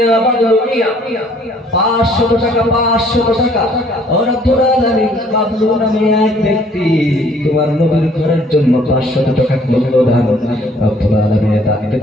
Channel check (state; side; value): normal; both; correlation 0.60